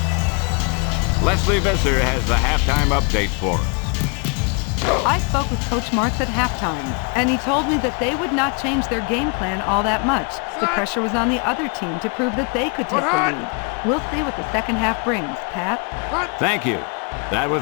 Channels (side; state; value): right; quieter; 35.3 dB